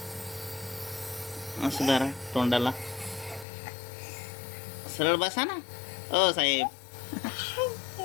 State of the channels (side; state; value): right; drops out; at 3.5 s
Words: असं धरा तोंडाला. सरळ बसा ना. ओ साहेब,